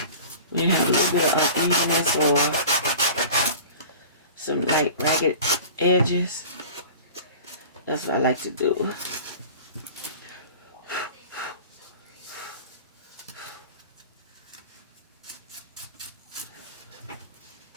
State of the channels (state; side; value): inverted; both; correlation -0.40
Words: When you have a little bit of unevenness or some like ragged edges, that's what I like to do.